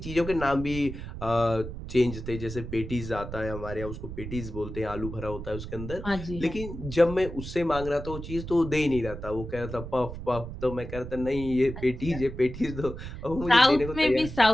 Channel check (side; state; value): right; noise; rumble, 9 dB below the sound